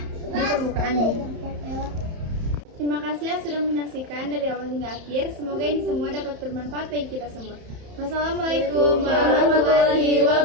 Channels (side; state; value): left; late; 31 ms